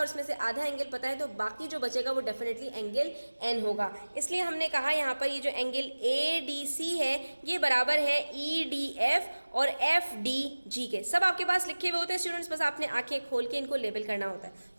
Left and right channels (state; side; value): inverted; both; correlation -1.00